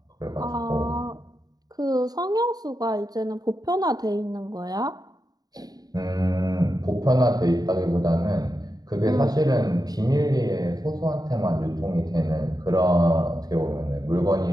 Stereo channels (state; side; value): late; left; 0.18 ms